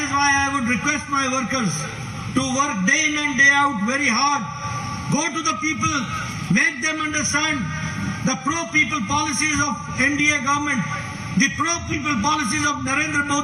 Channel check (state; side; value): identical; both; correlation 1.00